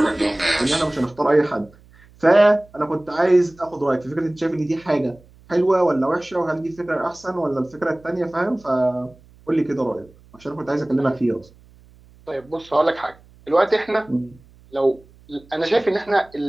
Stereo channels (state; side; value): noise; right; hum, 27 dB below the sound